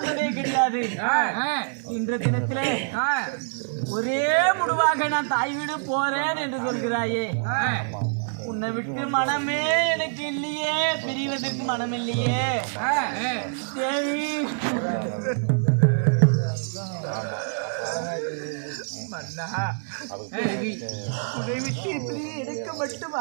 கிடையாது. இன்ற தினத்திலே ஒரே முடிவாக நான் தாய் வீடு போறேன் என்று சொல்கிறாயே. உன்னை விட்டு மனமே எனக்கு இல்லையே, பிரிவதற்கு மனம் இல்லையே தேவி. உன்னை விட்டு இப்படி எனக்கு மட்டும்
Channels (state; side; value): silent; left; 61 dB below the other